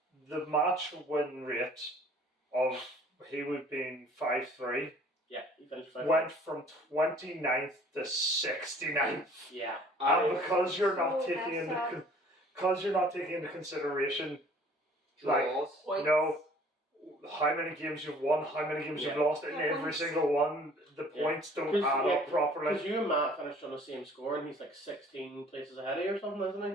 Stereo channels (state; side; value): normal; both; correlation 0.53